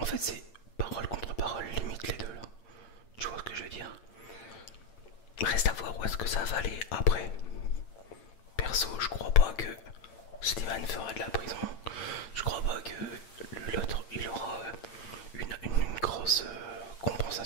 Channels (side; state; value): right; late; 8.9 ms